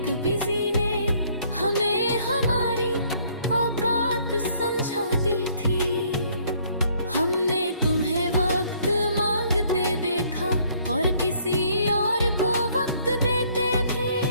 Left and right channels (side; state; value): both; inverted; correlation -0.63